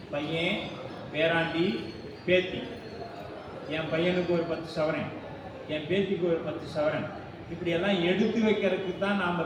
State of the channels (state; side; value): identical; both; correlation 1.00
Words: பையன், பேராண்டி, பேத்தி. என் பையனுக்கு ஒரு 10 சவரன், என் பேத்திக்கு ஒரு 10 சவரன், இப்படியெல்லாம் எடுத்து வைக்கிறதுக்கு தான்